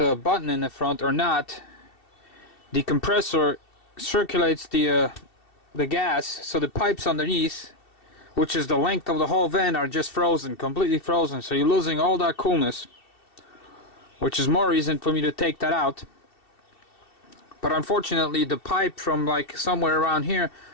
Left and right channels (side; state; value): right; late; 2.7 ms